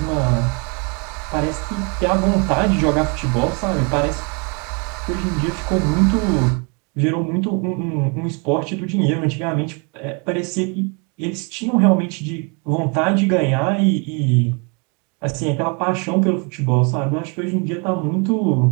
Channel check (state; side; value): quieter; left; 33.9 dB